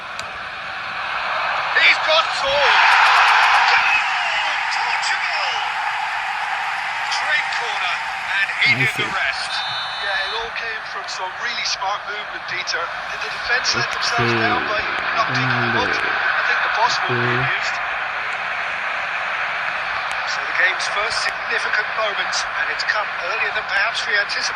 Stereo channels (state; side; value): identical; both; correlation 1.00